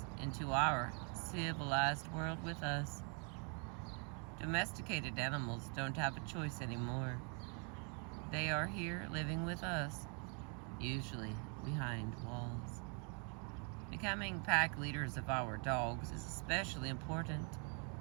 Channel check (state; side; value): quieter; left; 37.9 dB